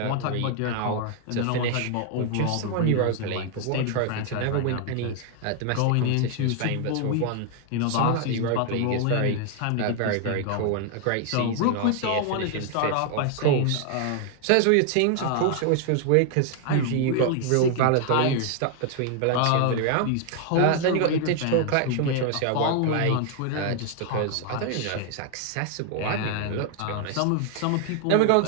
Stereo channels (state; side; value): different; both; correlation 0.00